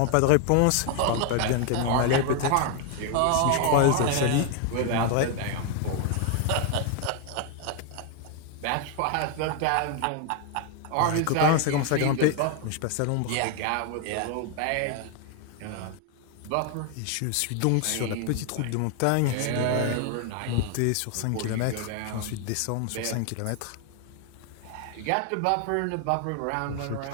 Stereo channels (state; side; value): different; both; correlation 0.00